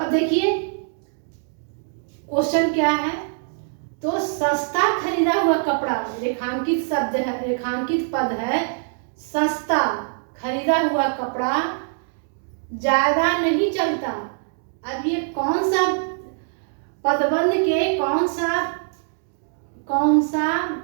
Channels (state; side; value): silent; left; 63 dB below the other